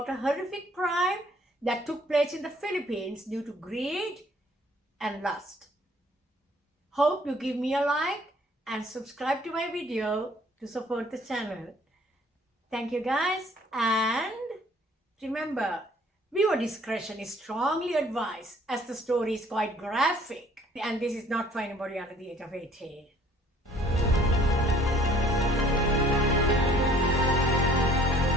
a horrific crime that took place in the Philippines due to greed and lust. Hope you give me a like and subscribe to my video to support the channel. Thank you guys, and remember, viewer discretion is strongly advised as the story is quite graphic and this is not for anybody under the age of 18.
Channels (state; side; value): normal; both; correlation 0.57